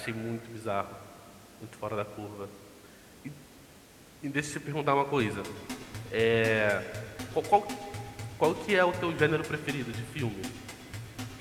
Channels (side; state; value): both; identical; correlation 1.00